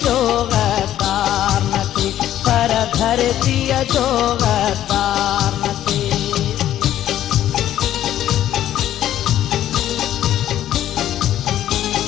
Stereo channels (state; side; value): quieter; right; 12.1 dB